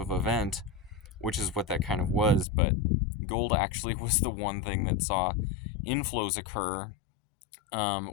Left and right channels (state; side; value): drops out; right; at 2.5 s